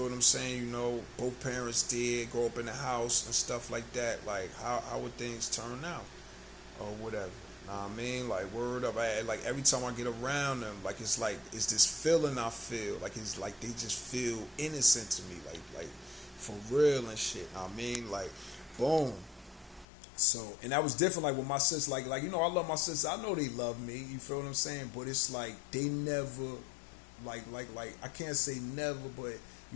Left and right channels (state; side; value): drops out; right; at 19.9 s